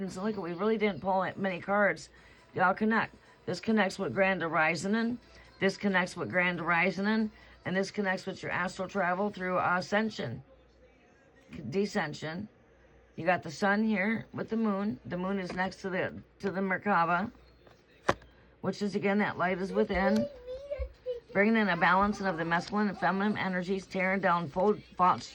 And look, we really didn't pull many cards. Y'all connect. This connects with Grand Horizon. This connects with Grand Horizon. And this connects with your astral travel through Ascension. Descension. You got the sun here with the moon. The moon is next to the Merkaba. Which is, again, that light is within. Bringing in a balancing of the masculine and feminine energies. Tearing down fault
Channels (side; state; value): both; identical; correlation 1.00